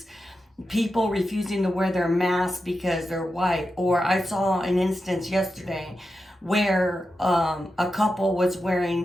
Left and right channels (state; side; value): normal; both; correlation 0.90